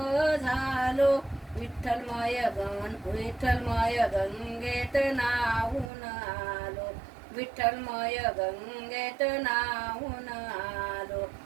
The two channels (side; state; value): left; drops out; at 5.9 s